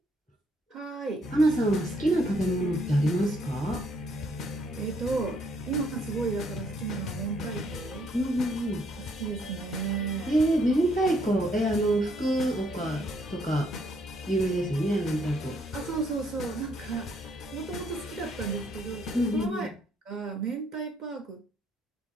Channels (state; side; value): normal; both; correlation 0.70